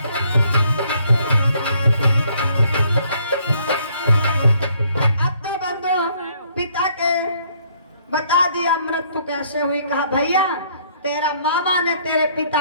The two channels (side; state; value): both; inverted; correlation -0.65